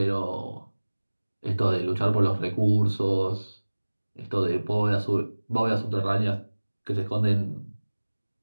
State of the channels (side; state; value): both; inverted; correlation -1.00